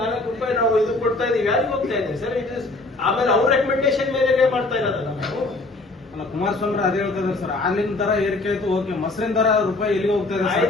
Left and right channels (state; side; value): quieter; right; 3.1 dB